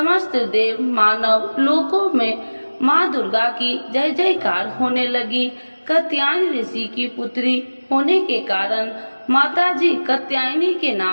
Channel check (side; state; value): both; inverted; correlation -1.00